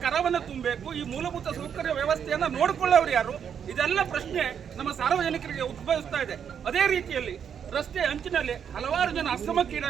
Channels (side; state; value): left; quieter; 7.9 dB